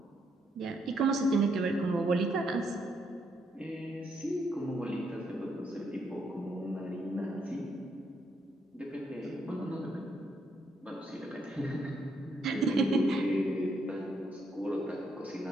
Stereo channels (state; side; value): normal; both; correlation 0.75